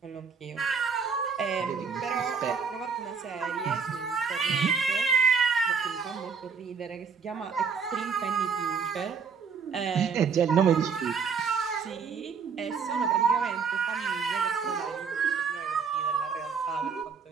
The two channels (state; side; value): quieter; left; 5.9 dB